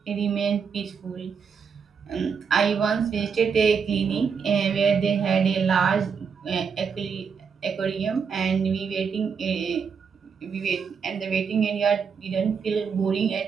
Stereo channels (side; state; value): left; quieter; 6.2 dB